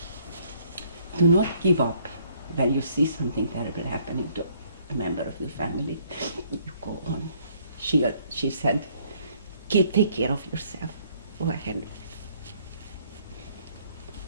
up when you see something terrible happening to a member of your family. You go on. She said, take care of yourself. Go ahead.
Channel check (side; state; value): both; inverted; correlation -0.63